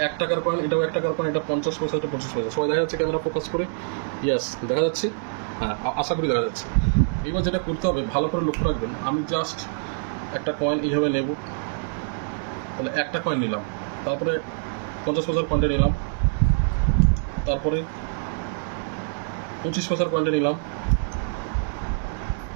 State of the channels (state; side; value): silent; left; digital silence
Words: 1 টাকার কয়েন, এটাও 1 টাকার কয়েন, এটা 50 পয়সা, এটা 25 পয়সা। সবাই দেখা যাচ্ছে ক্যামেরা ফোকাস করে? ইয়াস, দেখা যাচ্ছে। হ্যাঁ, আশা করি দেখা যাচ্ছে। এবার যেটা করতে হবে, ভালো করে লক্ষ্য রাখবেন। আমি জাস্ট একটা কয়েন এইভাবে নেব। তাহলে একটা কয়েন নিলাম, তারপরে 50 পয়সার কয়েনটা নিলাম, তারপরে 25 পয়সার কয়েনটা নিলাম,